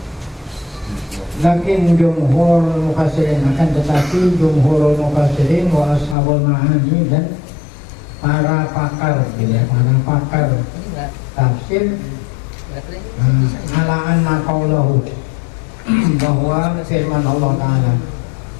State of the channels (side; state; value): right; drops out; at 6.2 s